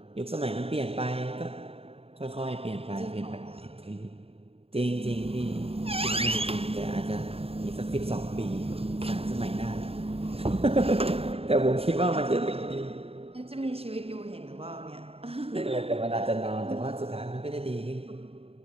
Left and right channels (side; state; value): left; late; 0.28 ms